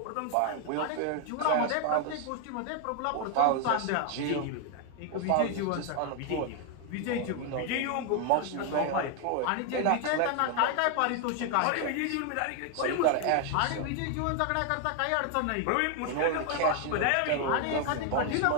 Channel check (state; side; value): different; both; correlation 0.01